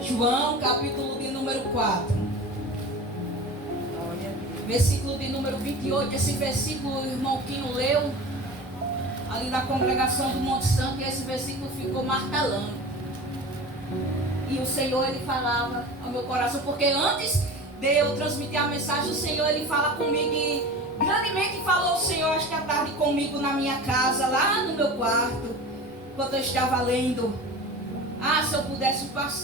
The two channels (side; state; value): both; normal; correlation 0.34